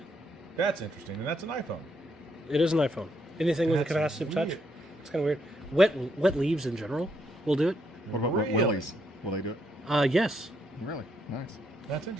That's interesting. And that's an iPhone. It is an iPhone. Anything with a That's capacitive touch? weird. It's kind of weird. Wet leaves in general will do it. What about Really? Willie's? Will they do it? Yes. Really? Nice. That's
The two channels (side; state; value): both; normal; correlation 0.75